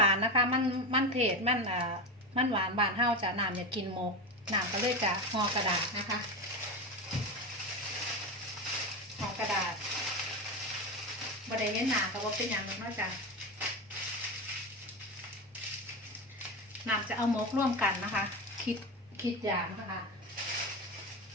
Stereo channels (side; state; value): both; normal; correlation 0.20